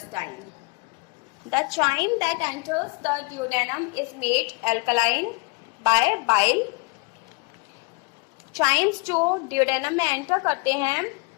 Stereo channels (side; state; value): right; quieter; 30.7 dB